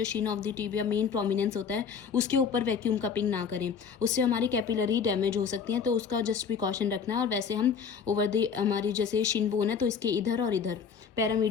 Shin of the tibia main prominence होता है, उसके ऊपर वैक्यूम कपिंग ना करें, उससे हमारी कैपिलरी डैमेज हो सकती हैं। तो उसका जस्ट प्रिकॉशन रखना है। और वैसे हम ओवर द हमारी जैसे शिन बोन है तो इसके इधर और इधर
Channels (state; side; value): quieter; right; 6.4 dB